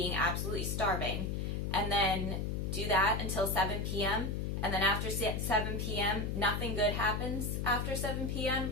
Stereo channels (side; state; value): left; noise; hum, 1 dB below the sound